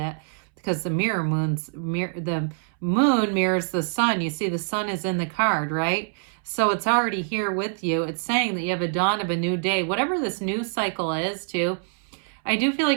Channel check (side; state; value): left; silent; 62 dB below the other